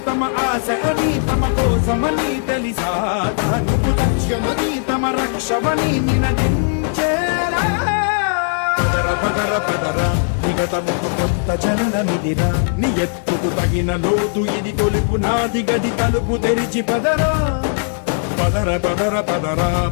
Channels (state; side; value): silent; right; digital silence